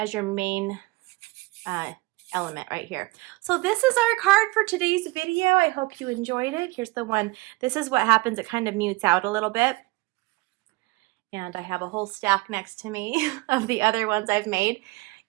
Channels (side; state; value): left; quieter; 23.3 dB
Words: your main element right here. So this is our card for today's video. I hope you enjoyed it. Here's the one. This is what happens. It kind of mutes out a little bit. And I have a whole stack next to me of the other ones I've made.